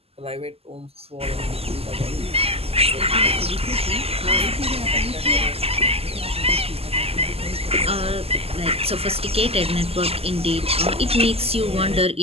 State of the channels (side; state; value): left; late; 0.29 ms